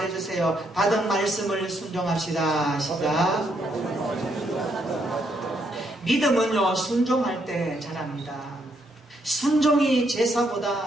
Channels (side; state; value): both; normal; correlation 0.75